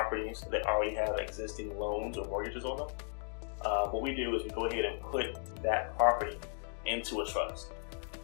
that already have existing loans or mortgages on them, what we do is we go ahead and put that property into a trust.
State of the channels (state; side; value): silent; right; 54 dB below the other